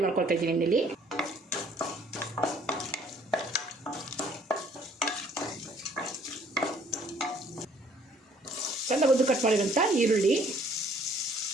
ಮಾಡ್ಕೊಳ್ತಾ ಇದ್ದೀನಿ. ಎಣ್ಣೆಲಿ ಚೆಂದ ಉದ್ದು ಕಟ್ ಮಾಡಿರೋಂಥ ಈರುಳ್ಳಿ,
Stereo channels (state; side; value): normal; both; correlation 0.60